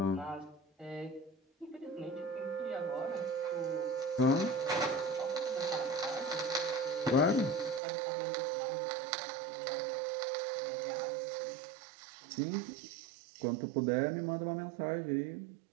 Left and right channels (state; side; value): drops out; left; at 7.8 s